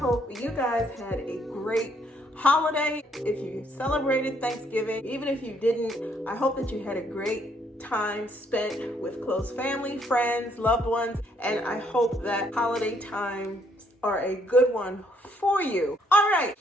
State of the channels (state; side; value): normal; both; correlation 0.69